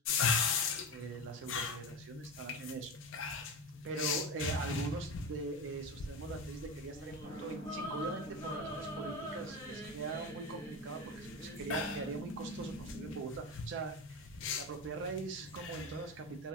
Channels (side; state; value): both; normal; correlation 0.23